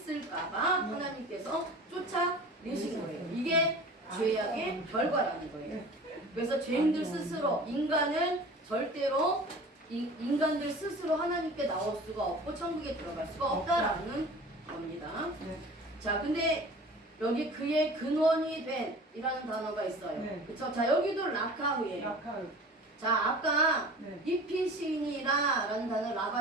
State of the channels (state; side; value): normal; both; correlation 0.41